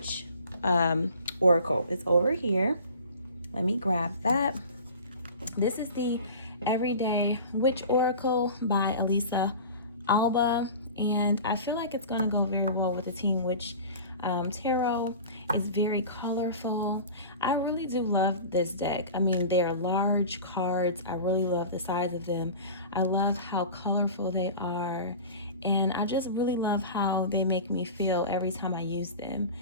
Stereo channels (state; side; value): inverted; both; correlation -0.36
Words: oracle. It's over here. Let me grab that. This is the Everyday Witch Oracle by Elisa Alba, and I feel like it's going to go very well with the Teen Witch Tarot. It's very colorful. I really do love this deck. I mean, they are large cards. I really love the size of them. I love how colorful they are, and I just really love how they make me feel every time I use them.